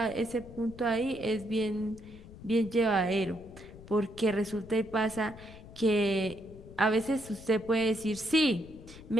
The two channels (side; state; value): left; noise; rumble, 18 dB below the sound